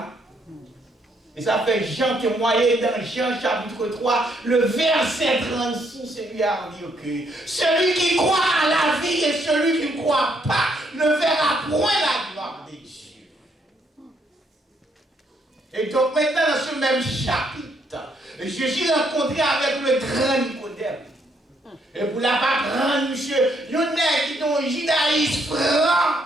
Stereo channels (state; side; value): normal; both; correlation 0.72